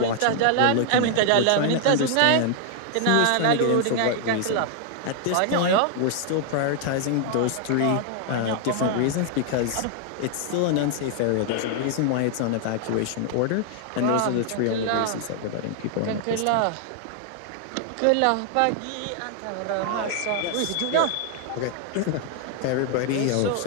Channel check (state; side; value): different; both; correlation 0.00